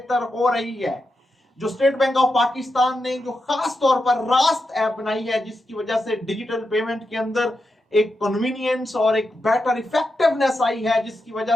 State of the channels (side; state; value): both; normal; correlation 0.87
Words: हो रही है। जो स्टेट बैंक ऑफ पाकिस्तान ने जो खास तौर पर रास्त ऐप बनाई है, जिसकी वजह से डिजिटल पेमेंट के अंदर एक कन्वीनियंस और एक बेटर इफेक्टिवनेस आई है, जिसकी